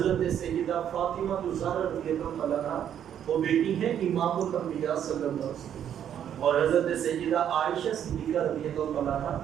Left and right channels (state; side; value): quieter; left; 9.6 dB